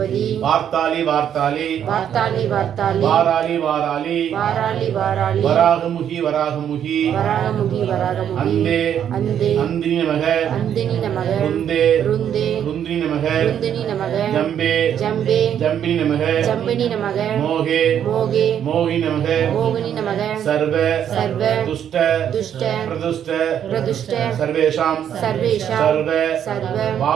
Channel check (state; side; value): quieter; left; 9.4 dB